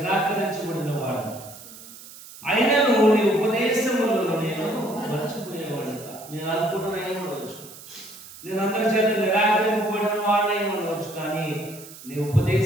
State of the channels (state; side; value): noise; right; hiss, 17 dB below the sound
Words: వాడు, అయినను నీ ఉపదేశములను నేను మర్చిపోయేవాడు. నేను అల్పుడనై ఉండవచ్చు, నేను అందరి చేత నిరాకరింపబడిన వాడై ఉండవచ్చు, కానీ నీ